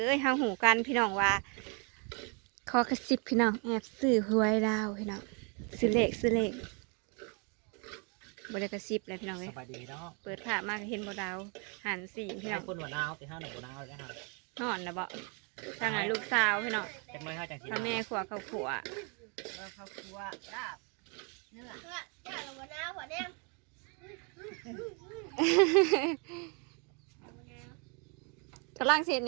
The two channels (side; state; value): left; quieter; 35.0 dB